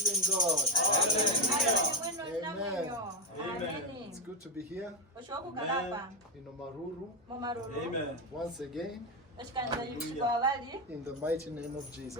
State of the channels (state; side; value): normal; both; correlation 0.09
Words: God. Amen. Amen. It's good to be here in Omaruru. Amen. Once again, in the mighty name of